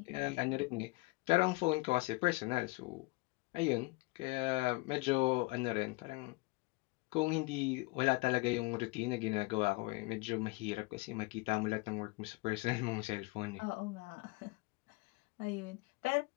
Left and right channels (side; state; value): right; quieter; 25.4 dB